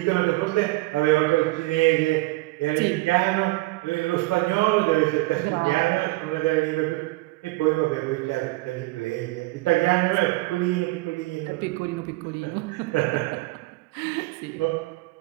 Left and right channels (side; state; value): left; quieter; 21.5 dB